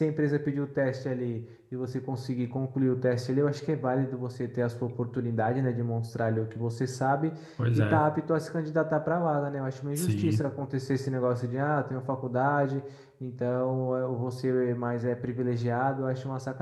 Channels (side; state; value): both; identical; correlation 1.00